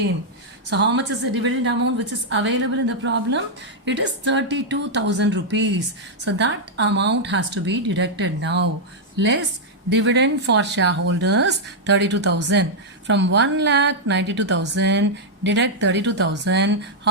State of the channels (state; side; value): normal; both; correlation -0.04